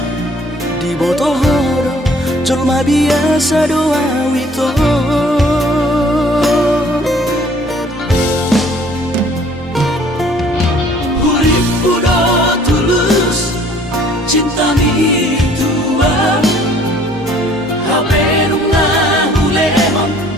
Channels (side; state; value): both; normal; correlation 0.56